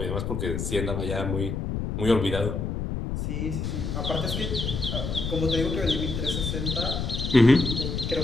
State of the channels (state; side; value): noise; left; rumble, 3 dB below the sound